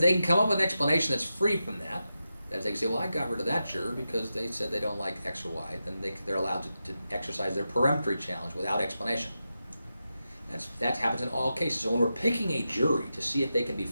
they can come up with an explanation that's free from that, that they can say, well, I got rid of that juror because they said they don't like X or Y, then they're allowed to exercise their peremptory challenge without explanation. That happens in all cases. So when we're picking a jury to see if they can be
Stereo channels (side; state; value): both; inverted; correlation -0.90